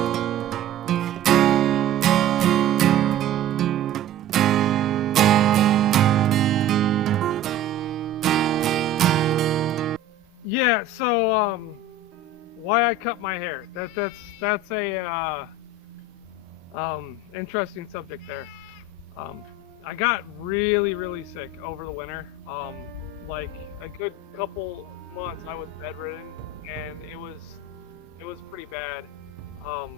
Yeah, so why I cut my hair? That's a interesting subject there. Um, I got really sick over the winter. Like a good couple months, I was bedridden, and it was pretty bad.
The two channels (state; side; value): quieter; left; 4.4 dB